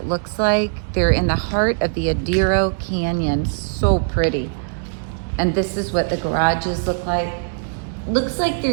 looks like. They're in the heart of the Adero Canyon. So pretty. And this is what the garages look like. Looks like they're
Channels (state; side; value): silent; left; digital silence